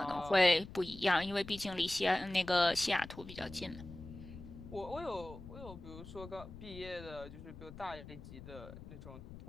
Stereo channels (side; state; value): left; noise; rumble, 14 dB below the sound